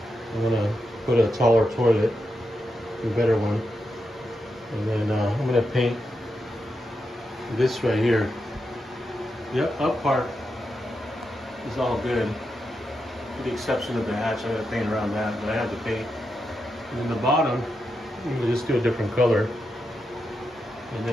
I'm gonna put a taller toilet, a better one. And then I'm gonna paint this right here. The up part is all good, with the exception of the hatch. I gotta paint around that, but I had to paint. And then the bottom, I'm gonna just do a different color. And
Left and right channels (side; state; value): both; normal; correlation 0.86